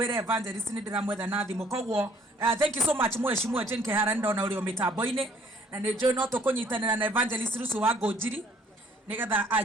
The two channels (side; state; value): both; normal; correlation 0.60